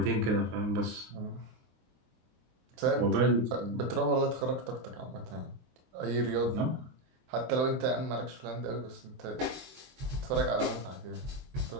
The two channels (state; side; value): late; left; 23 ms